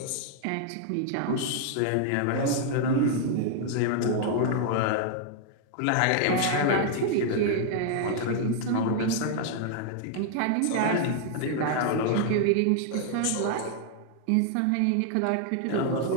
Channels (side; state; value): both; different; correlation 0.00